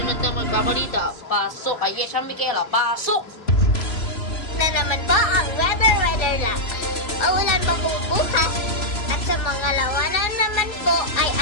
na magbabalita. Pasok kay Yesha Michaela, pasok! Na naman po ang weather lang. Maulan po bukas at sa mga lawanan naman po ay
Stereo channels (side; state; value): right; late; 3.0 ms